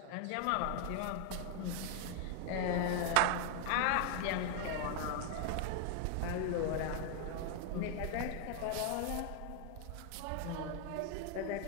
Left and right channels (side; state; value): both; different; correlation 0.00